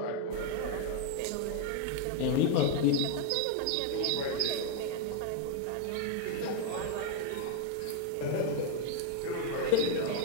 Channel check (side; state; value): both; different; correlation 0.01